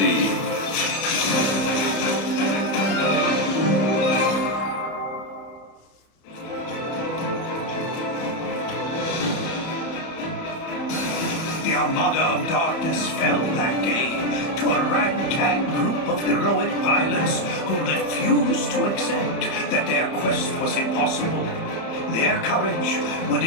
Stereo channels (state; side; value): late; right; 30 ms